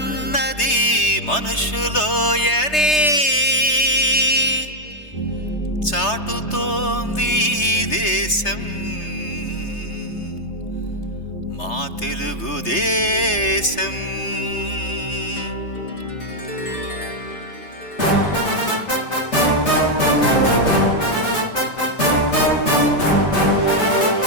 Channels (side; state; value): right; late; 3.3 ms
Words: మనుషులోయనే చాటుతోంది దేశం మా తెలుగుదేశం.